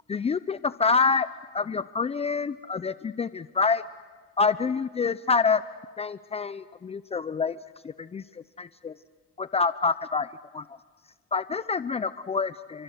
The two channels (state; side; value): quieter; right; 4.4 dB